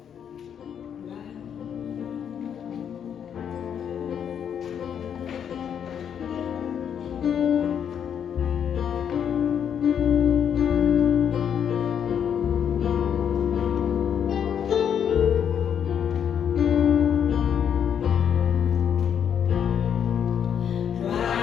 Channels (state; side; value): quieter; right; 8.4 dB